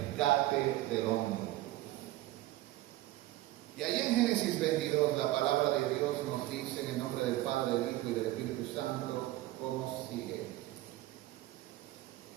del hombre. Y ahí en Génesis 22 la palabra de Dios nos dice en el nombre del Padre, del Hijo y del Espíritu Santo, como sigue.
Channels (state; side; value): quieter; left; 16.4 dB